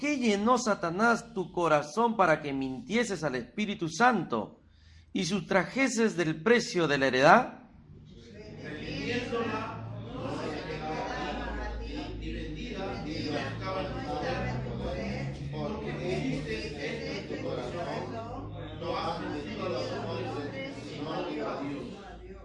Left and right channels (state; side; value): identical; both; correlation 1.00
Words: llenó Satanás tu corazón para que mintieses al Espíritu Santo y sustrajeses del precio de la heredad?